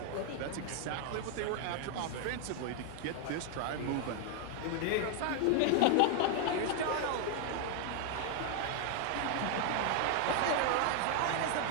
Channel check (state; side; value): different; both; correlation 0.00